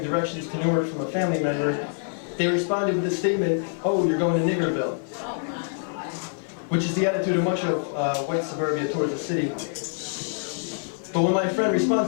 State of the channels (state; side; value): silent; right; digital silence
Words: directions to Newark from a family member, they responded with the statement, "Oh, you're going to Niggerville," which is the attitude of much of white suburbia towards the city. But when my friend